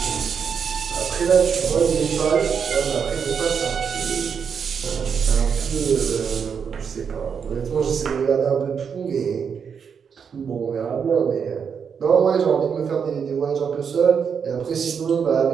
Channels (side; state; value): left; quieter; 6.8 dB